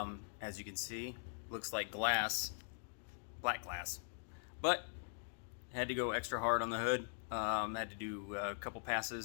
you can see, looks like glass, black glass, but had to go extra hard on the hood. Had to do a couple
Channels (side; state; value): right; silent; digital silence